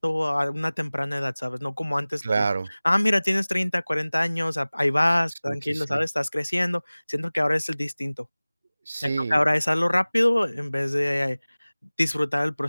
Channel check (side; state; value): both; inverted; correlation -0.99